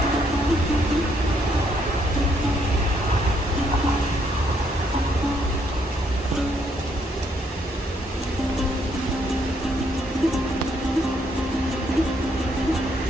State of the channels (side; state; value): both; normal; correlation 0.71